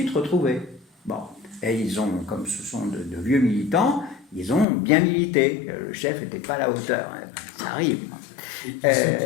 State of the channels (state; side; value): drops out; right; at 4.7 s